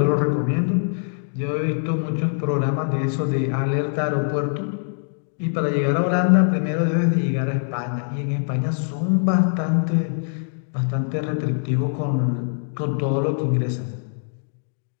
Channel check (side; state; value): right; silent; digital silence